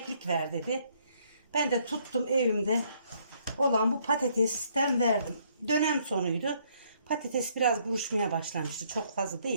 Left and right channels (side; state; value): both; inverted; correlation -0.68